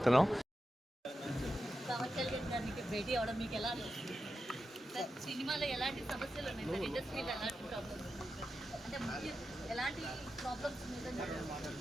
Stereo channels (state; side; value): normal; both; correlation 0.90